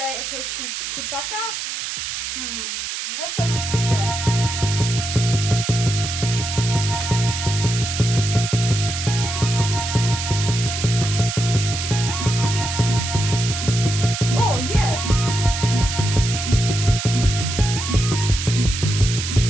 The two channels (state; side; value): noise; right; hiss, 5 dB below the sound